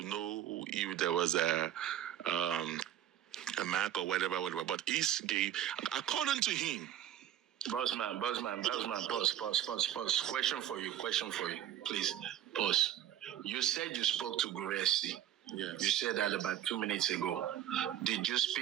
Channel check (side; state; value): left; quieter; 11.3 dB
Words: know if there was a mark or whatever, but he gave, according to him. Bossman, pause. Question for you, please. Pause. You said you spoke to gurexy. Yes. You said that about 2 minutes ago. Did you